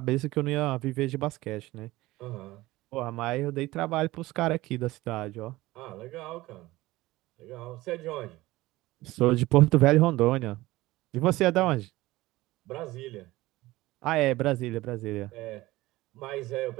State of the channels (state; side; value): quieter; left; 18.6 dB